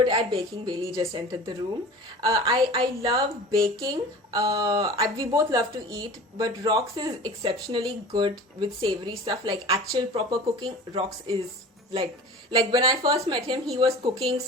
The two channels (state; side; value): normal; both; correlation 0.38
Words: at baking. Bailey just entered the room. I love baking. We both love to eat, but Rox is exceptionally good with savory stuff, like actual proper cooking. Rox is like when I first met him, he was cooking